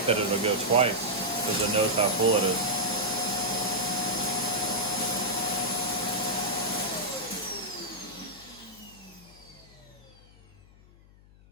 that it'll go twice because it knows how full it is.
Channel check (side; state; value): left; noise; hum, 25 dB below the sound